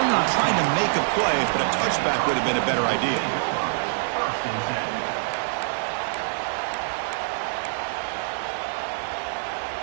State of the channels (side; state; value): left; silent; digital silence